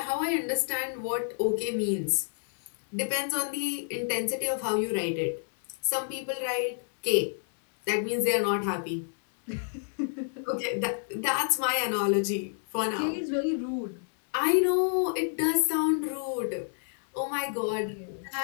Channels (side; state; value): right; silent; digital silence